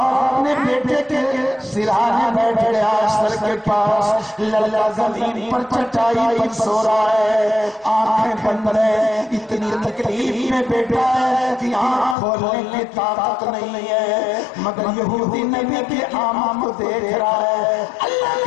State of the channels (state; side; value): drops out; right; at 12.2 s